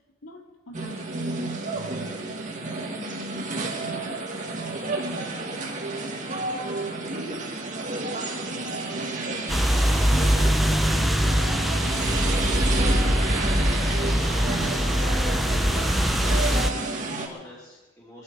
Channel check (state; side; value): normal; both; correlation 0.77